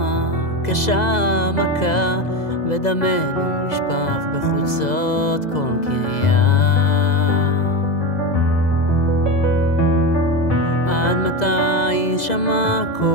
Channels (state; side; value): late; right; 2.0 ms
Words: קשה מכה, ודמנו נשפך בחוצות כל קריה. עד מתי שמע